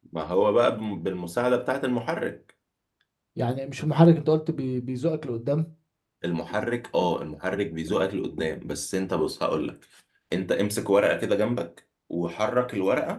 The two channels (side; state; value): both; identical; correlation 1.00